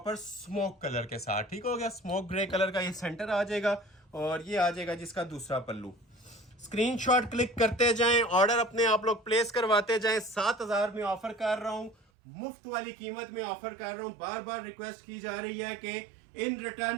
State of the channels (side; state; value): left; drops out; at 12.0 s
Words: स्मोक कलर के साथ, ठीक हो गया, स्मोक ग्रे कलर का ये सेंटर आ जाएगा। और ये आ जाएगा जिसका दूसरा पल्लू। स्क्रीनशॉट क्लिक करते जाएं, ऑर्डर अपने आप लोग प्लेस करवाते जाएं। 7,000 में ऑफर कर रहा हूं, मुफ्त वाली कीमत में ऑफर कर रहा हूं। बार बार रिक्वेस्ट की जा रही है कि इन